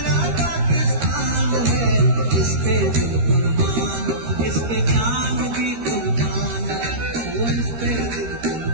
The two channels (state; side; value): late; left; 13 ms